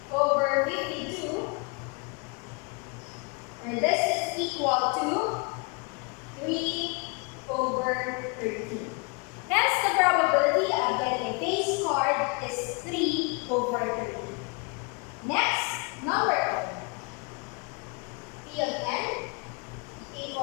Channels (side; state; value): right; quieter; 31.5 dB